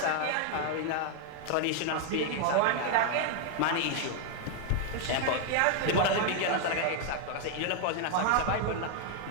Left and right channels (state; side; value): different; both; correlation 0.00